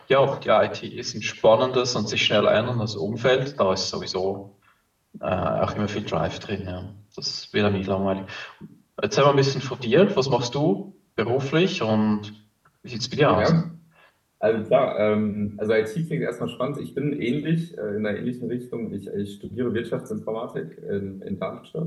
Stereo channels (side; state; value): both; identical; correlation 1.00